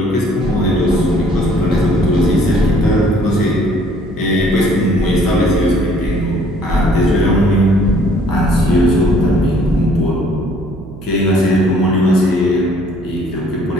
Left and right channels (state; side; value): noise; right; hum, 17 dB below the sound